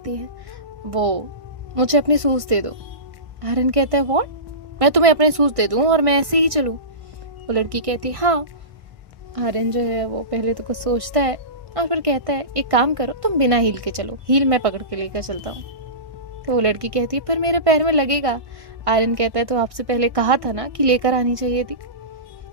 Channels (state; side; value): late; left; 1.6 ms